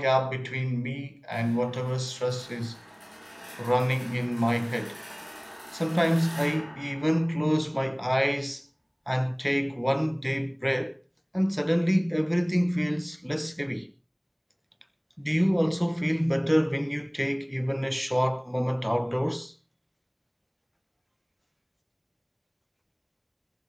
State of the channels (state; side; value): identical; both; correlation 1.00